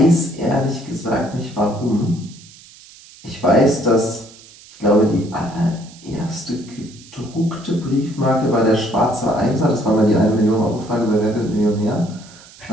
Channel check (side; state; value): right; noise; hiss, 22 dB below the sound